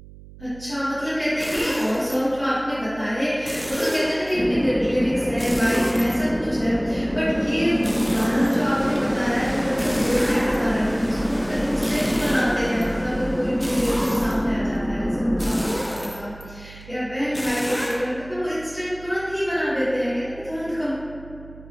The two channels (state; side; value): noise; right; hum, 18 dB below the sound